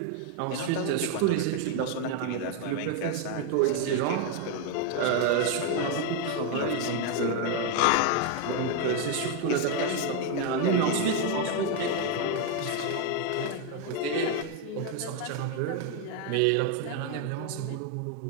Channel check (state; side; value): different; both; correlation 0.01